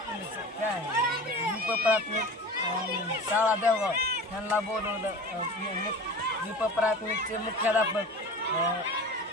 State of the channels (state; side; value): normal; both; correlation 0.36